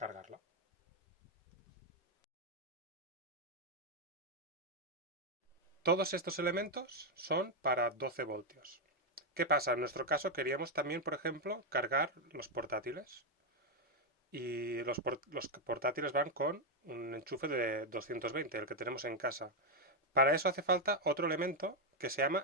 Todos estos elementos son para 12 voltios. ¿Qué pasa? En nuestro caso queríamos también, por ejemplo, cargar los portátiles. Y los portátiles van con un enchufe de 220, el que tenemos en casa. Para eso hace falta otro elemento que se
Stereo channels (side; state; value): both; normal; correlation 0.02